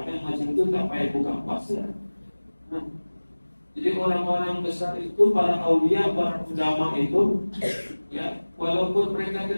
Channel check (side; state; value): both; inverted; correlation -1.00